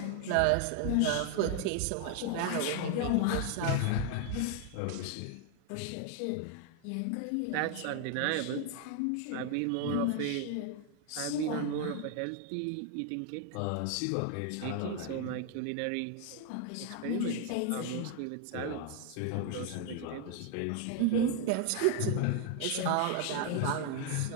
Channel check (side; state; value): both; different; correlation 0.01